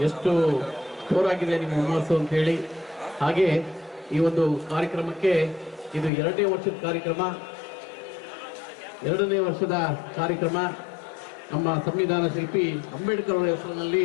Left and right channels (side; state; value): right; drops out; at 6.1 s